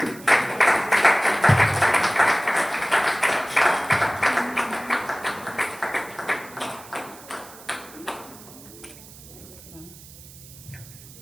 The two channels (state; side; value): noise; right; hiss, 19 dB below the sound